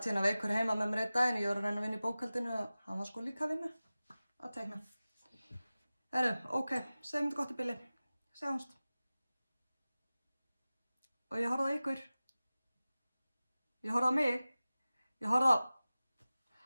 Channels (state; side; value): inverted; both; correlation -0.97